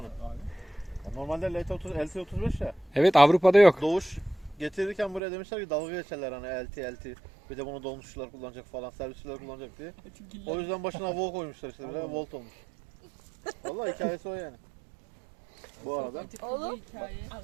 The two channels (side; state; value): left; drops out; at 5.2 s